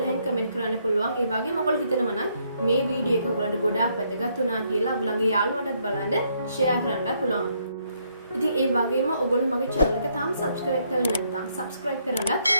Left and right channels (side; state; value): both; inverted; correlation -0.72